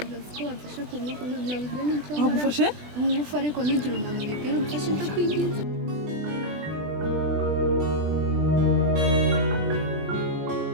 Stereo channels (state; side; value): late; left; 20 ms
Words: bose ko bamfashe ku ngufu nabuze n'icyo. Bagufashe? Ngufu ariko nugira umuntu ubibwira umfashe ndakwinginze.